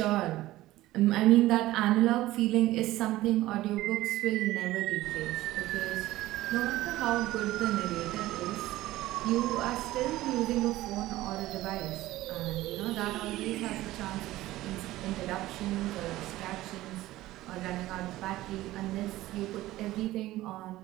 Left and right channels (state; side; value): quieter; left; 16.5 dB